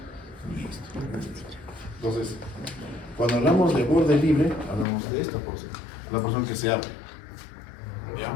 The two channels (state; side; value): drops out; right; at 4.9 s